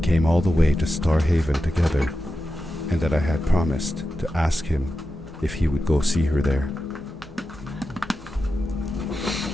all the way to Starhaven together, and that I had promised to ask him if he would go see her there.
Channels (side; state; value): both; normal; correlation 0.91